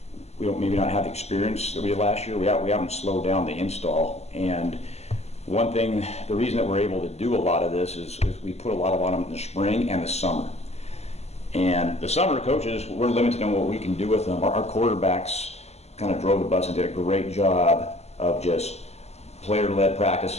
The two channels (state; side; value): late; right; 0.31 ms